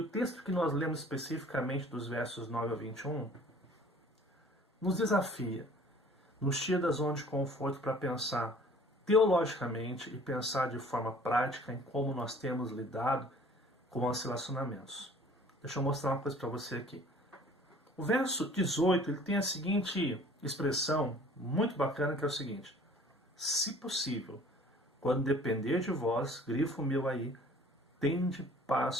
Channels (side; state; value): both; normal; correlation 0.51